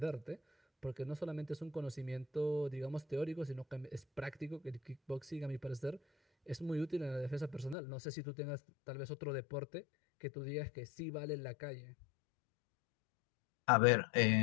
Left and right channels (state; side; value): drops out; right; at 7.8 s